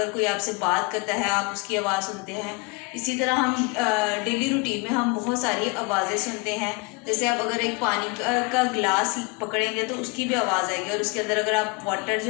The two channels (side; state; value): right; quieter; 29.1 dB